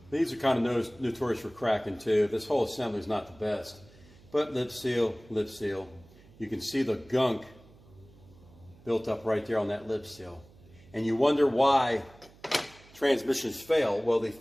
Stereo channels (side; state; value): right; noise; hum, 25 dB below the sound